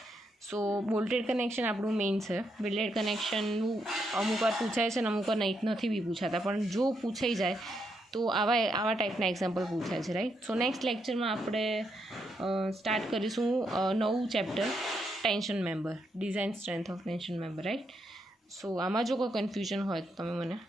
સો બોલ્ટેડ કનેક્શન આપણું મેઇન છે. વેલ્ડેડ કનેક્શનનું અમુક વાર પૂછાય છે અને અમુક વાર નથી બી પૂછાતા, પણ જો પૂછાઈ જાય તો આવા ટાઈપના એક્ઝામ્પલ પૂછાય છે, રાઈટ. સો નેક્સ્ટ લેક્ચરમાં આપણે સ્ટાર્ટ કરીશું નવું chapter, tension member, design strength of tension member, right. So આમાં જો કોઈ કન્ફ્યુઝન હોય તો તમે મને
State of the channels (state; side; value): normal; both; correlation 0.79